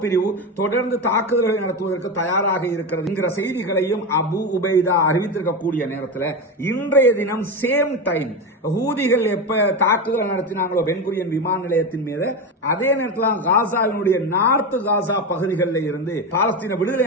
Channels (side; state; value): both; normal; correlation 0.18